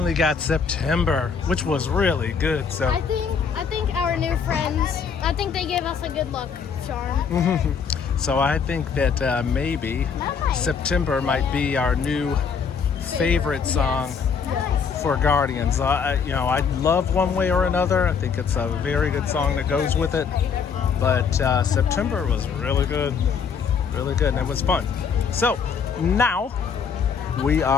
got September, which was really good. So I think our new friends, I think they gave us a good luck charm. so I think that maybe September might be our new favorite song for Guardians. I love One Way or Another. I think it's a very good song that goes with it. But September was really good, and it was fun. So now we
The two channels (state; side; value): quieter; right; 6.3 dB